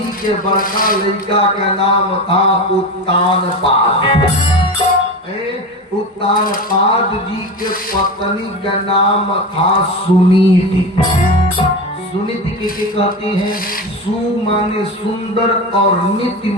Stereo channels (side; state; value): both; normal; correlation 0.24